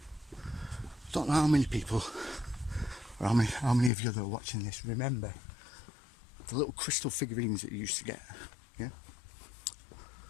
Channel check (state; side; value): drops out; right; at 3.9 s